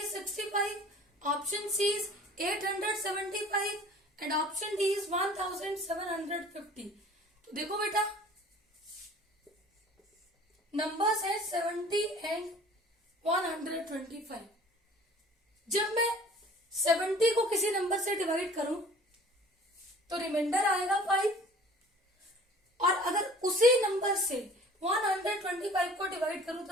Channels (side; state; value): both; normal; correlation 0.48